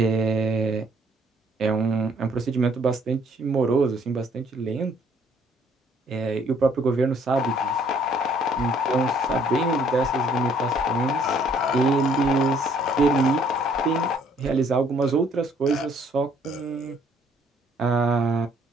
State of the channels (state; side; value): normal; both; correlation 0.63